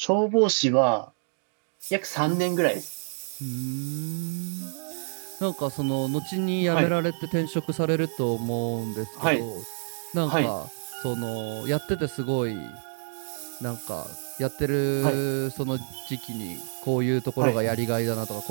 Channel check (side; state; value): left; silent; digital silence